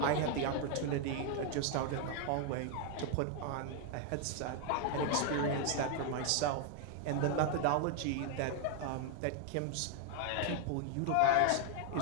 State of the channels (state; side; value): different; both; correlation 0.00